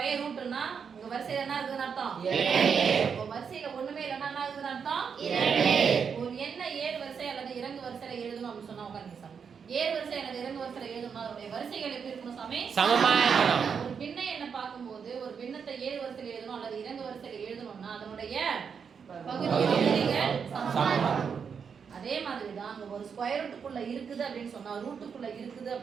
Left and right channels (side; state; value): left; quieter; 6.5 dB